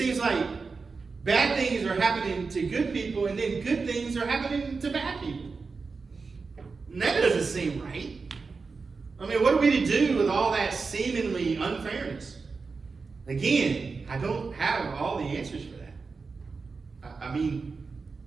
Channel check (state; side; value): quieter; left; 4.5 dB